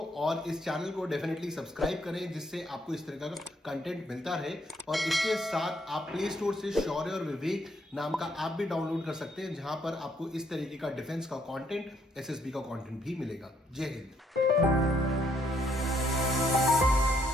और इस चैनल को डेफिनेटली सब्सक्राइब करें जिससे आपको इस तरह का कंटेंट मिलता रहे, और इसके साथ आप प्ले स्टोर से शौर्य और विवेक नाम का ऐप भी डाउनलोड कर सकते हैं, जहां पर आपको इस तरीके का डिफेंस का कंटेंट, एसएसबी का कंटेंट भी मिलेगा। जय हिंद।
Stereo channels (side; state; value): both; normal; correlation 0.71